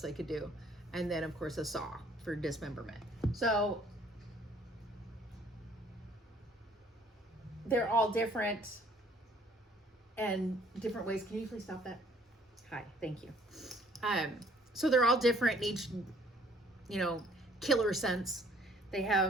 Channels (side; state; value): both; normal; correlation 0.59